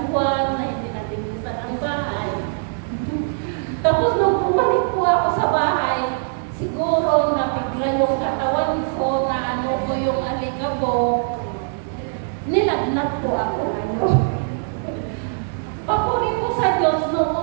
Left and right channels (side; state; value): left; silent; digital silence